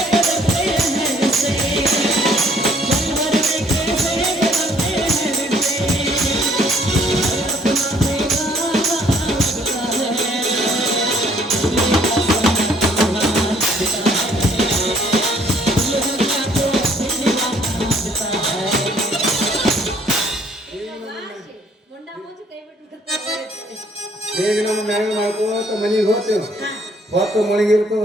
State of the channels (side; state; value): both; normal; correlation 0.62